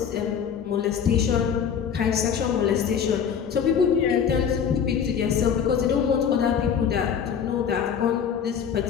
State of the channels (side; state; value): right; quieter; 7.6 dB